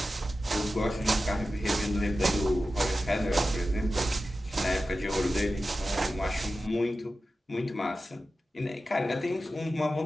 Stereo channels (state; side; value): normal; both; correlation 0.93